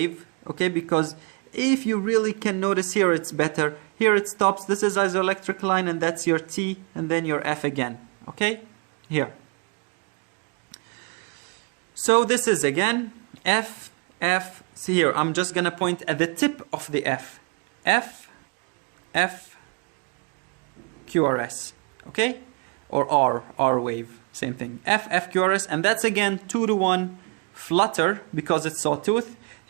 okay? Because if you really can notice here, it's better. Here it stops. This is isoelectric line, and that's your T, and then your F again, okay? Here. So this is again F, F. See here, I'm just gonna point at the tip of the F. F, F, QRS, okay? Or R wave, same thing. F, F, QRS, and that's again 2 to 1 flutter because it's sawtooth.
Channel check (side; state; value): left; quieter; 33.8 dB